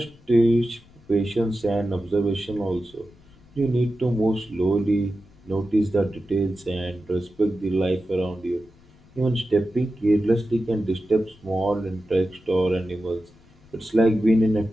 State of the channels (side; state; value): left; noise; rumble, 27 dB below the sound